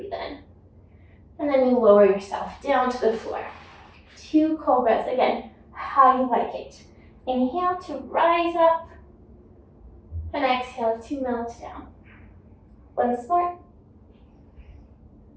in, and then you lower yourself down to the floor. 2 cobras, again, how you like it. Inhale to rise up, and exhale to melt down. Once more.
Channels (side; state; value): both; identical; correlation 1.00